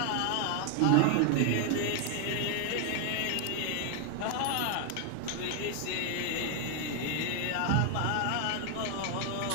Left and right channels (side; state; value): both; different; correlation 0.00